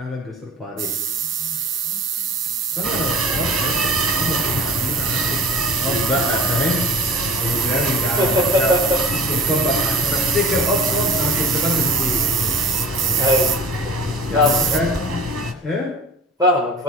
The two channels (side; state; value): both; normal; correlation 0.39